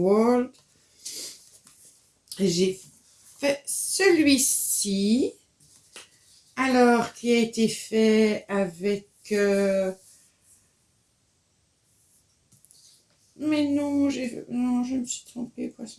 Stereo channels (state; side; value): identical; both; correlation 1.00